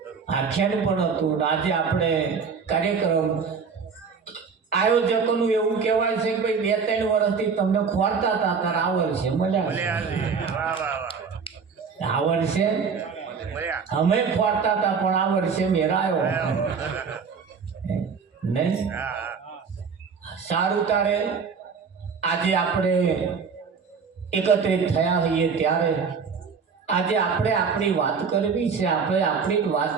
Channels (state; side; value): quieter; left; 5.7 dB